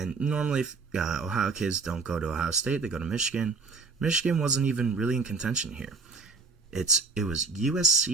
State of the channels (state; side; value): quieter; left; 4.4 dB